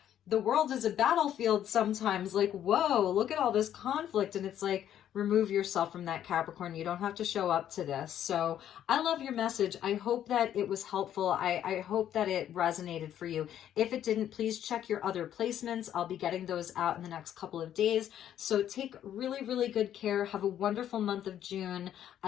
the world is a battlefield sometimes. Like, whoa, look at all this conflict. And it's like, remove yourself from that, Capricorn. You don't have to show up to this. So I love your message. I hope that it was helpful. I hope that it resonated for you. If it didn't, please check your other placements. I'll be getting those out in the next couple of days. So take really, really good care. Have a wonderful month of June.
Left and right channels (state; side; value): quieter; right; 10.7 dB